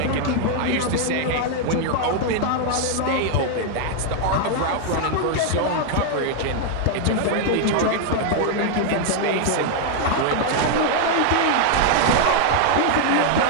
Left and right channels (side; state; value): both; different; correlation 0.00